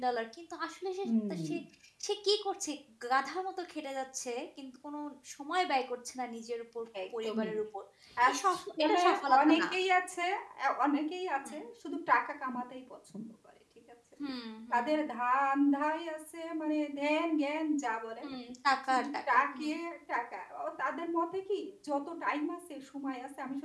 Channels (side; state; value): both; identical; correlation 1.00